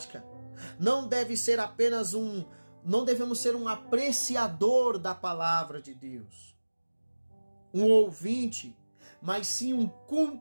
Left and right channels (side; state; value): both; inverted; correlation -1.00